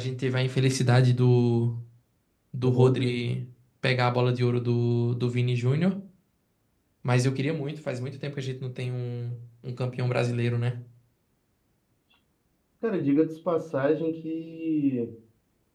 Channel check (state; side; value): identical; both; correlation 1.00